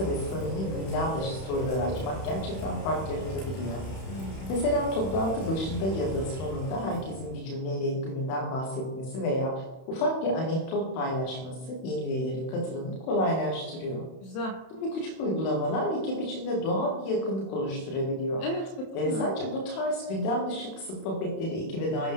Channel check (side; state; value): right; late; 31 ms